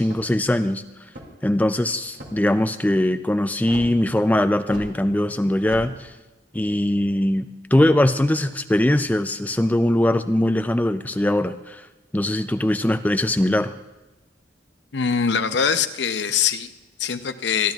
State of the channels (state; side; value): normal; both; correlation 0.81